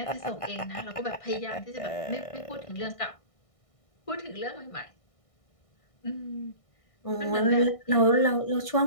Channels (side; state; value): right; late; 1.6 ms